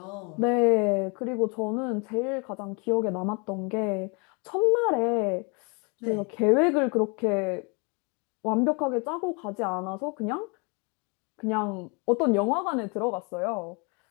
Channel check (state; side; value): quieter; right; 32.3 dB